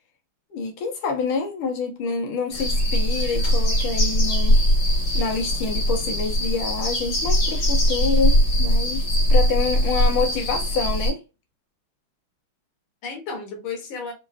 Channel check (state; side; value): late; right; 5.8 ms